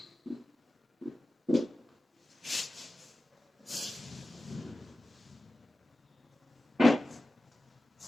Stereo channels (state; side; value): normal; both; correlation 0.94